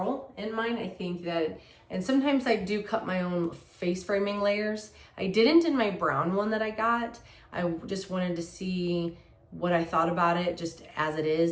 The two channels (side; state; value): both; identical; correlation 1.00